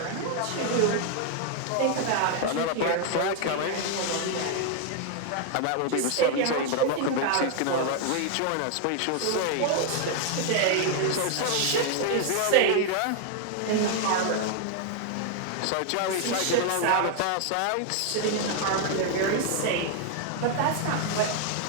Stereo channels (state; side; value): different; both; correlation 0.00